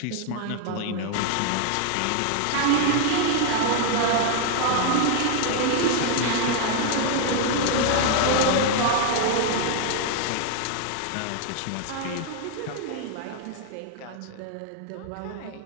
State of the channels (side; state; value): both; different; correlation 0.00